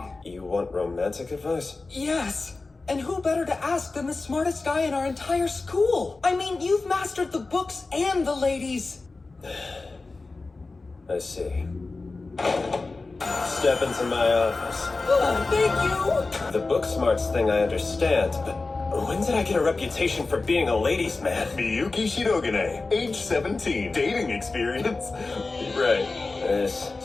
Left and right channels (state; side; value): quieter; right; 3.6 dB